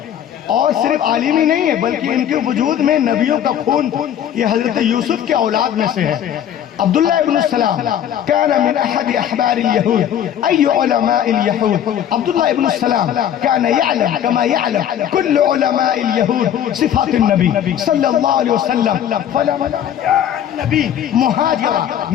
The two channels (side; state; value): right; quieter; 10.1 dB